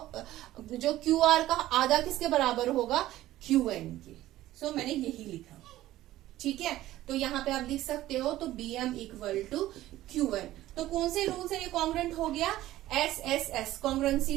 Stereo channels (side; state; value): left; quieter; 15.0 dB